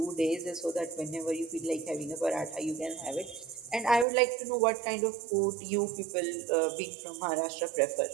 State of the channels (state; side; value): drops out; left; at 4.0 s